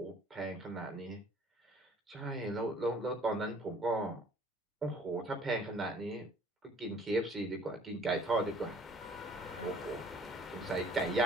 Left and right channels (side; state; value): both; normal; correlation 0.55